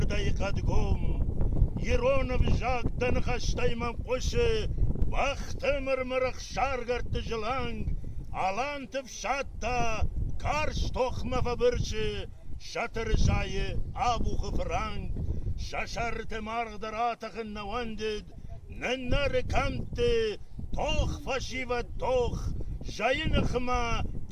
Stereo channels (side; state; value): both; identical; correlation 1.00